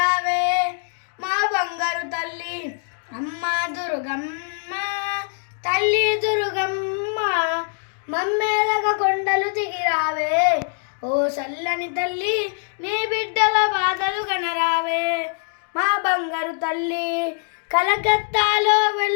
మా బంగారు తల్లి అమ్మ దుర్గమ్మ తల్లి దుర్గమ్మ మమ్మేలగ కొండలు దిగిరావే ఓ చల్లని తల్లి నీ బిడ్డల బాధలు గనరావే మా బంగారు తల్లి కలకత్తాలో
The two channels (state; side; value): silent; right; 59 dB below the other